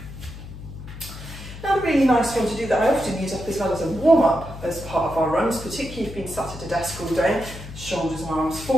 Another really nice one to do that I often use up as well as a warm-up as part of our runs, particularly if you've been sat at a desk all day, shoulders and arms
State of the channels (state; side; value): noise; left; hum, 12 dB below the sound